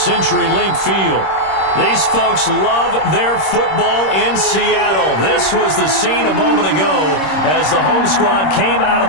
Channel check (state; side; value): late; right; 26 ms